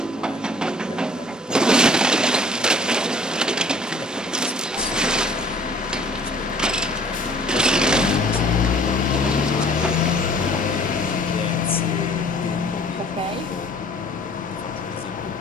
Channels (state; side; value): normal; both; correlation 0.53